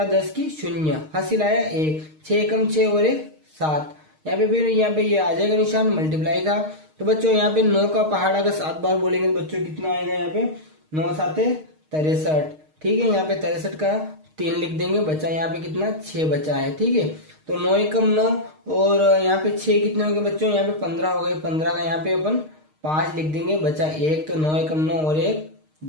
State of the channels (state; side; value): late; left; 6.5 ms